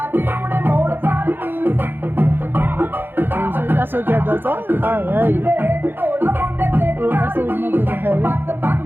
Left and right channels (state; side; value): late; left; 0.099 ms